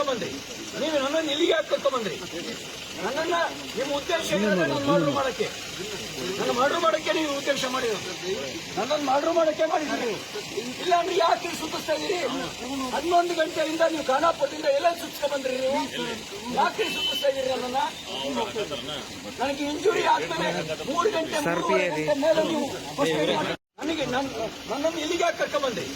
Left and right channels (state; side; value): identical; both; correlation 1.00